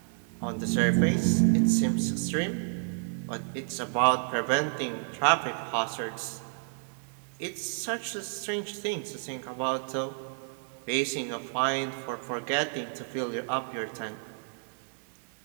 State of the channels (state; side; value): silent; left; digital silence